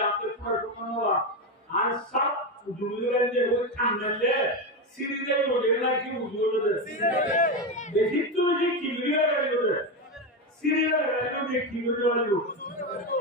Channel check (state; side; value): normal; both; correlation 0.13